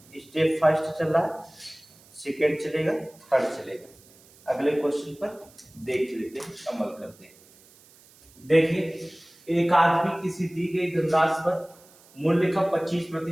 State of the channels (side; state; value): right; noise; hiss, 26 dB below the sound